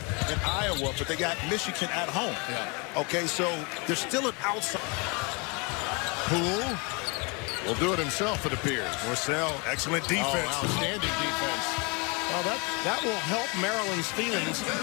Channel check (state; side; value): quieter; right; 31.0 dB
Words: in Iowa, but they got Michigan at home. Yeah. Okay, so there's still an outside. Poole will do it himself, it appears. Marcel, excellent defense. Oh, outstanding defense. Well, that will help Maryland's feelings